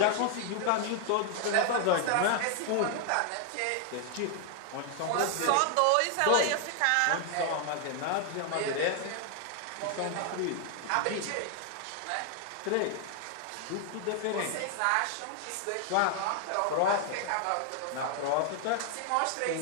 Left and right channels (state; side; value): different; both; correlation 0.00